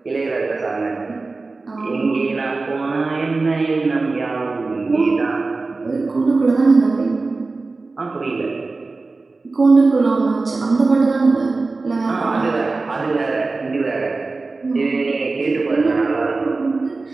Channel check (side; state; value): left; quieter; 3.7 dB